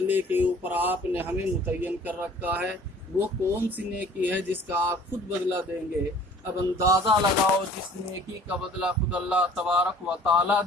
کے اوپر آپ نے ہمیں متعین کر رکھا ہے۔ وہ کون سی نیکی ہے جس کا آپ خود بدلہ دیں گے؟ اب اندازہ لگاؤ، جس نیکی کا بدلہ خود اللہ تبارک و تعالیٰ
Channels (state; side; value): normal; both; correlation 0.51